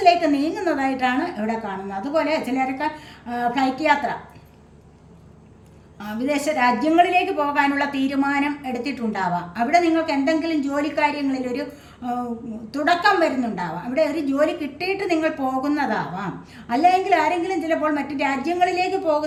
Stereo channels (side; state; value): both; identical; correlation 1.00